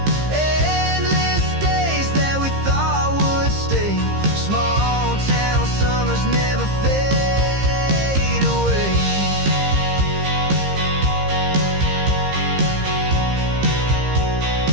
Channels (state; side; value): late; left; 15 ms